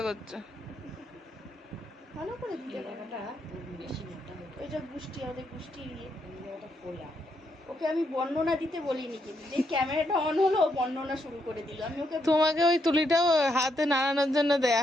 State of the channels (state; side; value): normal; both; correlation 0.78